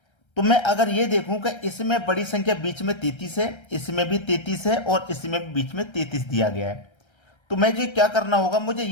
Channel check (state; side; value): late; right; 1.3 ms